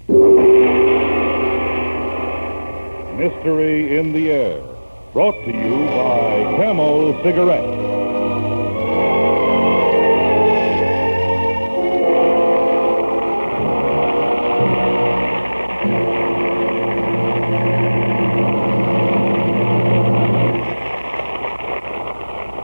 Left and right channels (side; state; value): both; inverted; correlation -1.00